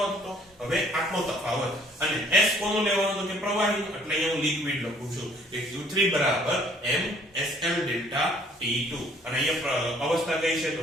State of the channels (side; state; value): both; normal; correlation 0.59